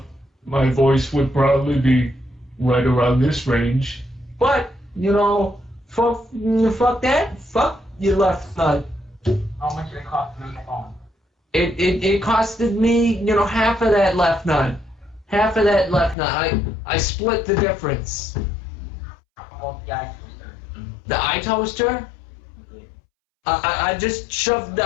my voice would probably be right around this range. But fuck that. Fuck your left nut. How much did it cost to make a phone? It costed me half of that left nut. Half of that left nut. I split the difference. Well, the eye toaster. The eye toaster. I just shoved the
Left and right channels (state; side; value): drops out; right; at 16.2 s